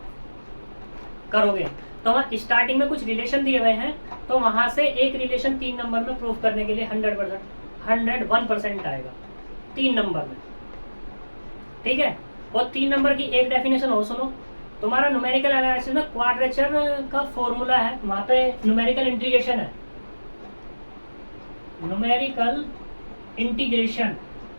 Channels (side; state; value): both; inverted; correlation -1.00